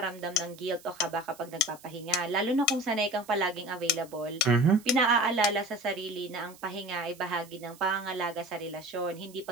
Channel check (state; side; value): noise; right; hiss, 22 dB below the sound